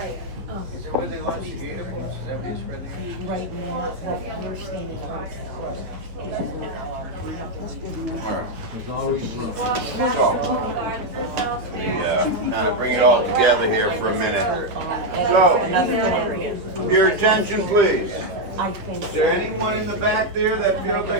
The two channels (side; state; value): left; late; 9.9 ms